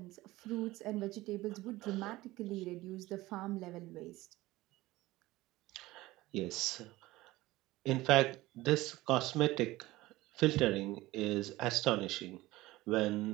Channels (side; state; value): left; quieter; 18.4 dB